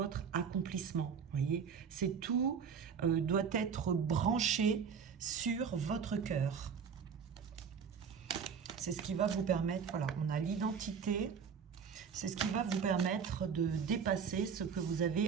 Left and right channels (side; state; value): left; quieter; 6.5 dB